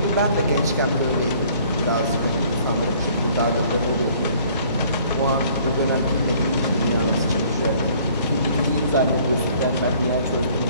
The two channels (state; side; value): inverted; both; correlation -0.57